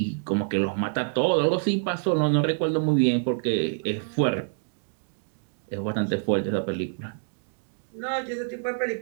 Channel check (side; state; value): left; silent; digital silence